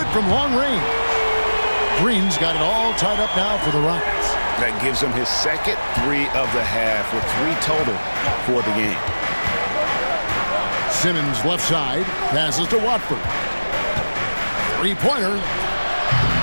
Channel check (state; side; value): inverted; both; correlation -1.00